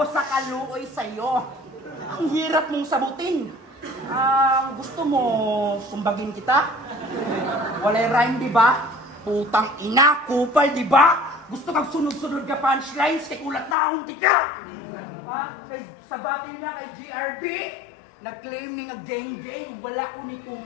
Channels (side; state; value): right; drops out; at 13.8 s